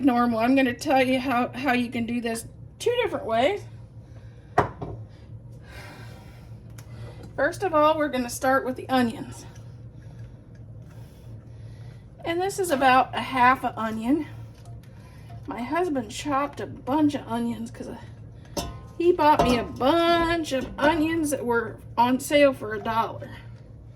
normal. I'm going to tell you how you can do this 2 different ways. First of all, we're going to start with the onions, and this is about a half an onion. My husband chopped a bunch of onions because he bought me a bunch of onions that were on sale for $1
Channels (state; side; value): identical; both; correlation 1.00